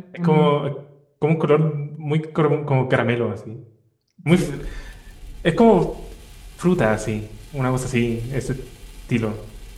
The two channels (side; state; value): both; identical; correlation 1.00